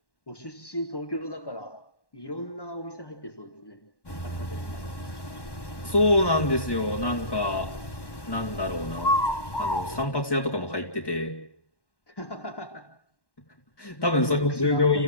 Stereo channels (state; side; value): late; right; 1.1 ms